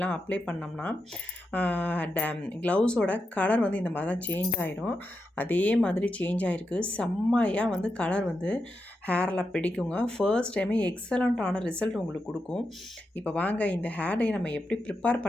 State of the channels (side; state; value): both; normal; correlation 0.87